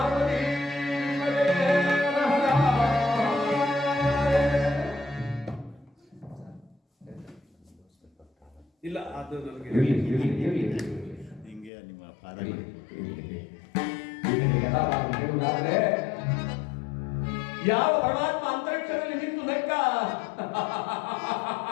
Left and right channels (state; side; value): drops out; right; at 11.7 s